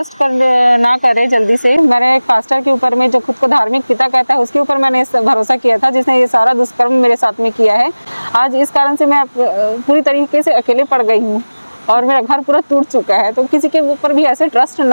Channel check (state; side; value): inverted; both; correlation -1.00